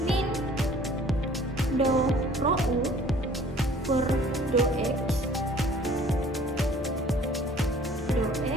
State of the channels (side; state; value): both; normal; correlation 0.53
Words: min do rho U per do X